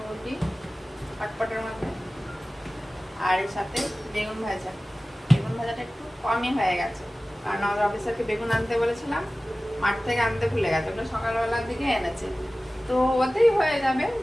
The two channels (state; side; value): normal; both; correlation 0.97